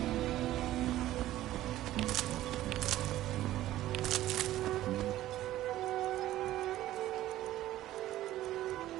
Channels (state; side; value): quieter; left; 14.4 dB